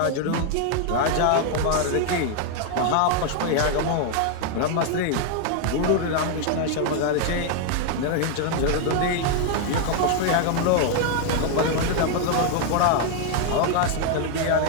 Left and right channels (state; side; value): different; both; correlation 0.00